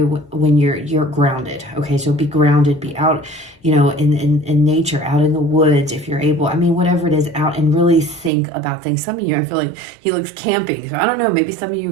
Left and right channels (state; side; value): drops out; left; at 8.3 s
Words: when you're grounded. Okay, so be grounded, be out, in nature, out in the woods if you're able. I mean, whatever it is, out and really think about things. Some of you, I feel like he looks camping. So I don't know, maybe some of you